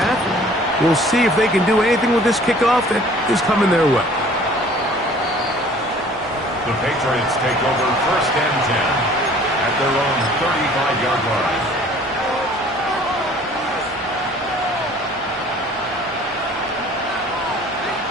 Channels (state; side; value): normal; both; correlation 0.52